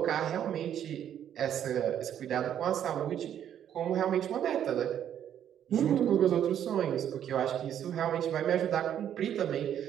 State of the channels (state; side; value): quieter; left; 9.9 dB